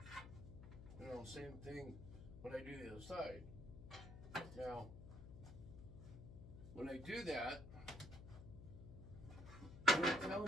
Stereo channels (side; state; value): left; noise; hum, 12 dB below the sound